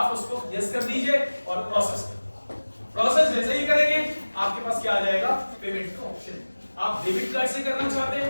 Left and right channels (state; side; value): inverted; both; correlation -1.00